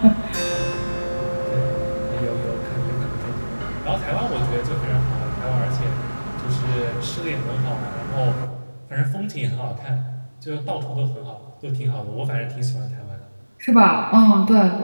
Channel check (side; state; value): both; inverted; correlation -1.00